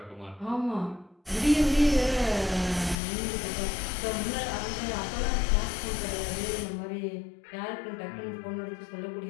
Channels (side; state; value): right; drops out; at 3.0 s